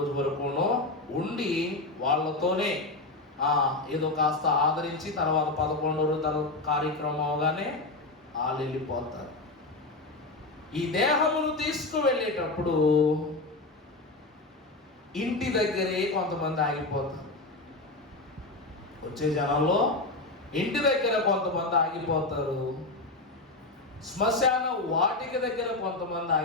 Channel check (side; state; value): right; quieter; 3.1 dB